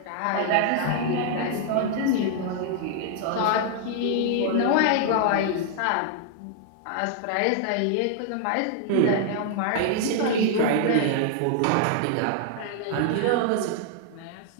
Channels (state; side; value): different; both; correlation 0.00